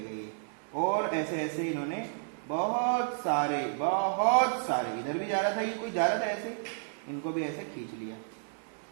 ये। और ऐसे ऐसे इन्होंने बहुत सारे इधर भी जा रहा था, ये कोई जा रहा था ऐसे, इनको भी ऐसे खींच लिया।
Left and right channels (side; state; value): left; silent; digital silence